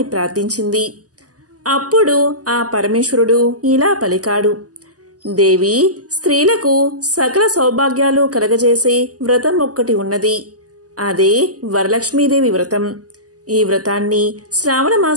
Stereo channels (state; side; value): late; left; 0.67 ms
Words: ప్రార్థించింది. అప్పుడు ఆ పరమేశ్వరుడు ఇలా పలికాడు. దేవి, స్త్రీలకు సకల సౌభాగ్యాలు కలగజేసే వ్రతం ఒక్కటి ఉన్నది. అదే వరలక్ష్మీదేవి వ్రతం. ఈ వ్రతాన్ని శ్రావణ